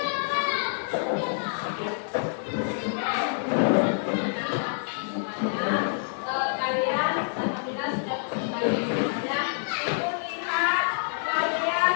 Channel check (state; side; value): silent; right; digital silence